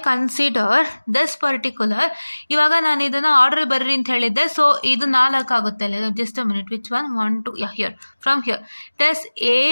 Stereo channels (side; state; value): both; inverted; correlation -1.00